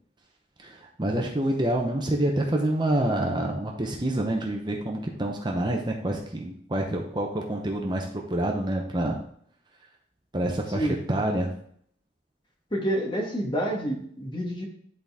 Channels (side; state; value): both; normal; correlation 0.71